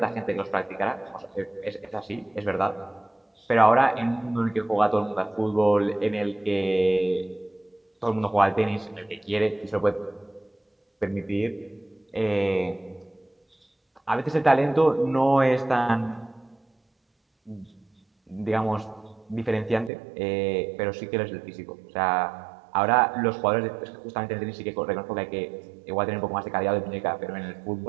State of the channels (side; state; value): left; drops out; at 19.9 s